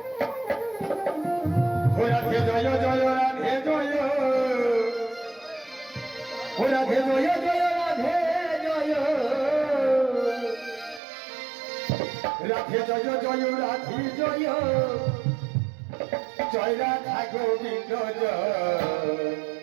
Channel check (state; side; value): drops out; left; at 11.0 s